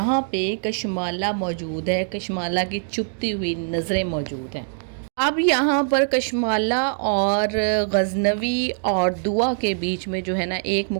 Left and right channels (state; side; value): silent; left; digital silence